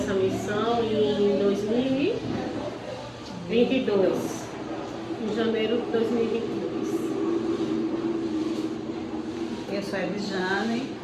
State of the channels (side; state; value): both; identical; correlation 1.00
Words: missão em 2022, em janeiro de 2022. Eu sou a Edjane,